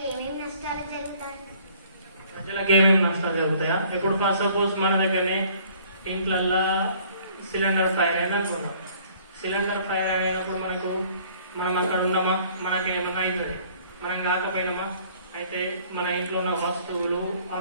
ఏమేమి నష్టాలు జరుగుతాయి? ప్రజలకు ఏమేమి నష్టాలు జరుగుతాయా? ఇప్పుడు ఫస్ట్ సపోజ్ మన దగ్గరనే ఇంట్లల్లా సిలిండర్ ఫైర్ అయింది అనుకుంటాం. సిలిండర్ ఫైర్ అయినప్పుడు మనం అక్కడ ఉన్నామా, మనకి ఏమన్నా అవుతుంది. మనం కాకపోయినామా, అయితే మన ఇంట్లో ఉన్న వస్తువులు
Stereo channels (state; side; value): inverted; both; correlation -0.56